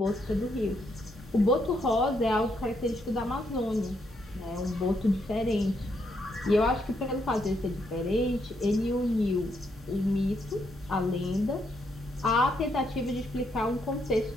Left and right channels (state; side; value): normal; both; correlation 0.76